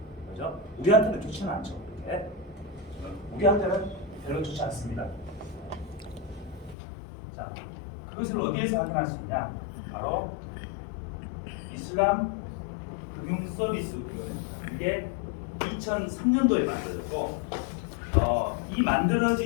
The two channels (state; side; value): drops out; right; at 6.8 s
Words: 그죠? 우리한테는 좋지는 않죠. 그렇게. 우리한테는 별로 좋지 않습니다. 자, 그것을 어디에서 확인할 수 있냐? 바로 이슬람 금융 서비스. 이게 2003년도에 만들어졌고, 이